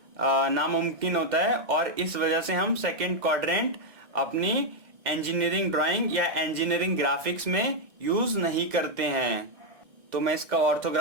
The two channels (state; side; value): late; left; 1.6 ms